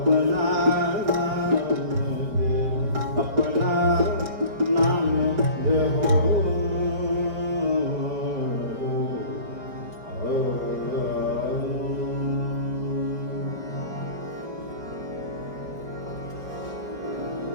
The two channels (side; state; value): left; late; 5.2 ms